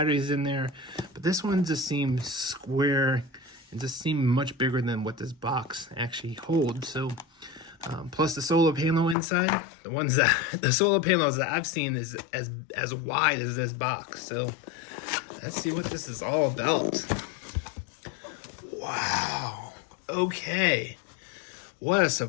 in there. But this one just seems square and just seemed much bigger than what this box actually holds. So plus the solar panel inside, the solar panels that I've seen is as wide as this box. So let's see what this is all about. Wow. Okay. What a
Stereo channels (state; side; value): drops out; right; at 9.2 s